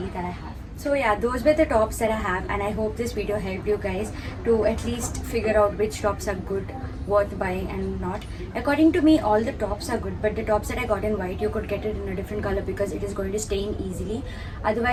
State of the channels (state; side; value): identical; both; correlation 1.00